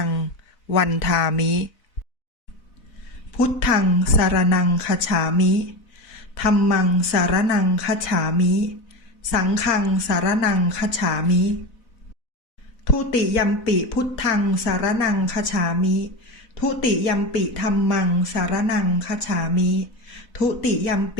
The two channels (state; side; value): late; right; 4.0 ms